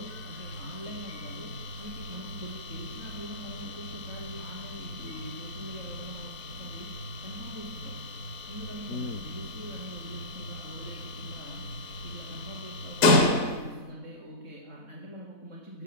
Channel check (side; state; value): right; late; 4.0 ms